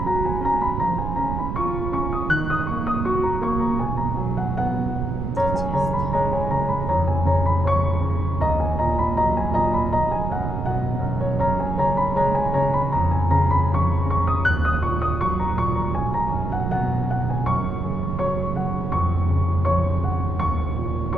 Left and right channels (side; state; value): right; noise; rumble, 3 dB below the sound